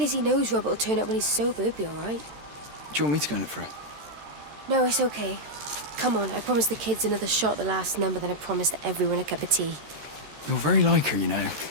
knows Robert will turn up when he's sober. He'll be all right. Do you want me to go and look for her? No, it's okay. Come on, I promised the kids another shot at the last number, then I promised everyone a cup of tea. You're very like her, you know.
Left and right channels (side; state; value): left; late; 13 ms